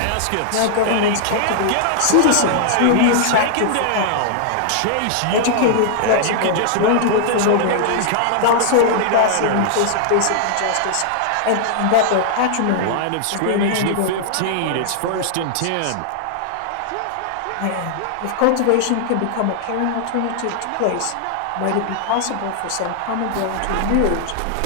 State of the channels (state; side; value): different; both; correlation -0.01